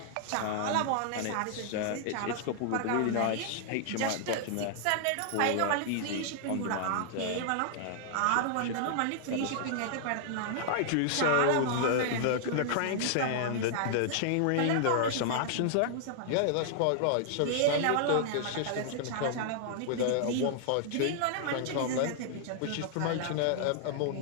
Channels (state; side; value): different; both; correlation -0.01